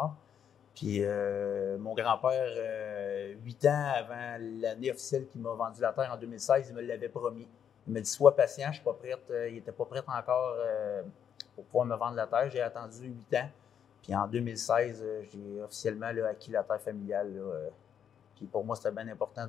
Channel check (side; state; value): right; quieter; 8.5 dB